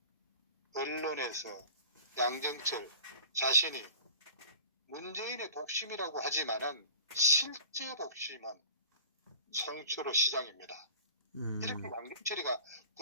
언론에서 양정철 자신이 문재인의 복심이라고 하지만은 실제 복심은 송철호 시장입니다. 이렇게 양정철이가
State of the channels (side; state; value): both; inverted; correlation -0.41